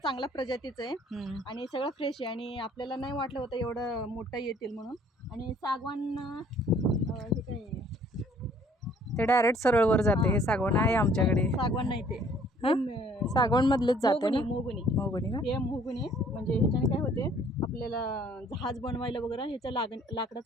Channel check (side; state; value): both; normal; correlation 0.58